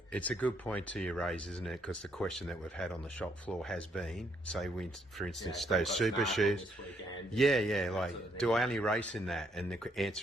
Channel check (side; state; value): both; normal; correlation 0.72